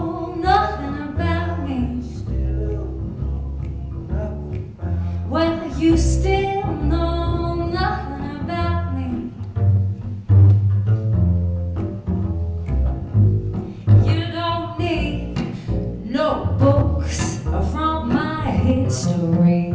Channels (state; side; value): identical; both; correlation 1.00